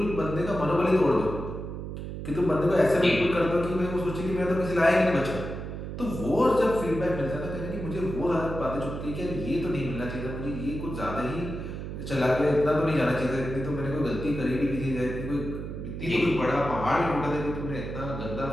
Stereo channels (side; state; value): right; noise; hum, 7 dB below the sound